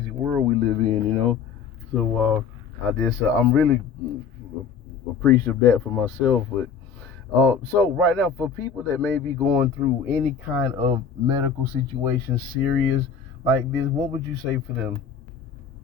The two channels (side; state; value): right; quieter; 6.3 dB